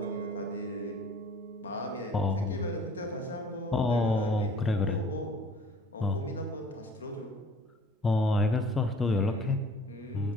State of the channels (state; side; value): normal; both; correlation 0.51